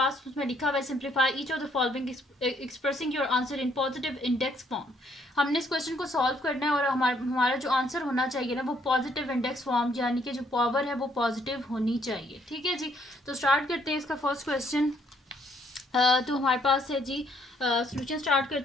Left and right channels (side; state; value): both; normal; correlation 0.68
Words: उसमें लिखा हुआ है simplify each of the following expressing your answer in positive index form. हमने इस क्वेश्चन को सॉल्व करना है और हमारा जो आंसर होना चाहिए ना वो पॉजिटिव इंडेक्स फॉर्म यानी कि जो पावर है वो पॉजिटिव होनी चाहिए। ठीक है जी, तो स्टार्ट करते हैं इसका फर्स्ट क्वेश्चन। तो हमारे पास है जी सोल्यूशन स्टार्ट